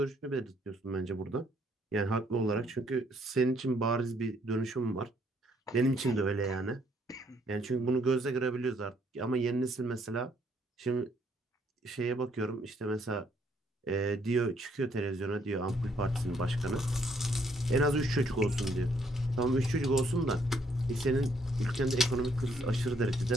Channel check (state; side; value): normal; both; correlation 0.69